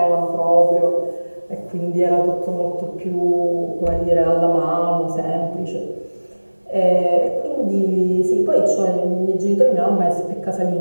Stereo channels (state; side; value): inverted; both; correlation -1.00